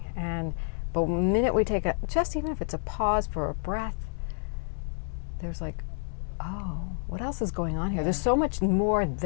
But the minute we take just even if it's a pause for a breath, there's like, oh, what else is going on here? There's so much more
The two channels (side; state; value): right; silent; 59 dB below the other